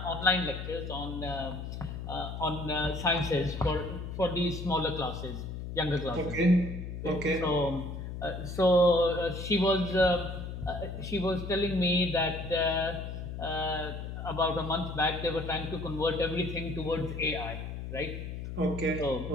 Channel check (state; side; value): noise; left; hum, 7 dB below the sound